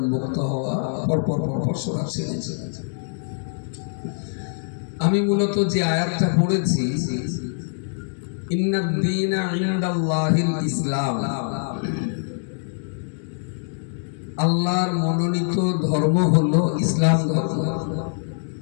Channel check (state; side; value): silent; right; digital silence